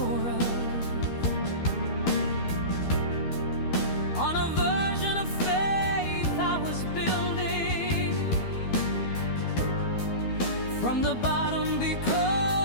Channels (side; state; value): right; late; 12 ms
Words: of, on a version of faith I was building from the bottom,